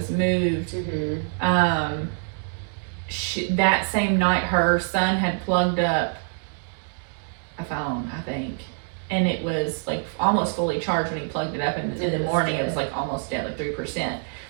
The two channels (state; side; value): silent; left; 56 dB below the other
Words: moved, that same night her son had plugged up a phone, I think, and it was like almost fully charged when he plugged it up, and in the morning it was like almost dead, like